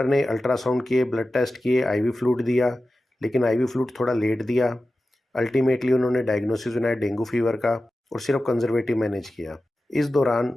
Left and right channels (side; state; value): both; normal; correlation 0.94